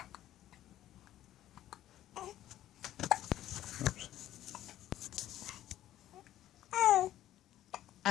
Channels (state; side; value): quieter; right; 13.1 dB